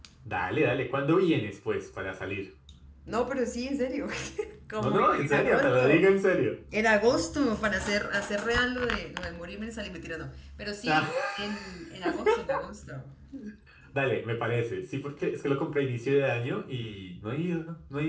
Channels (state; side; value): identical; both; correlation 1.00